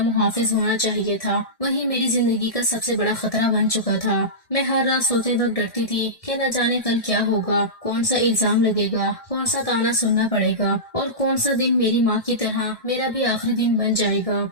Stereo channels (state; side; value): late; right; 1.6 ms